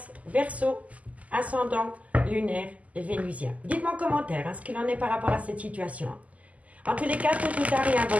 Verseau, ascendant lunaire vénusien. Dites-moi en commentaire ce qu'il en est par rapport à cette situation. En tous les cas, tout ou tard, il y a un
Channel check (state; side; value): late; left; 0.072 ms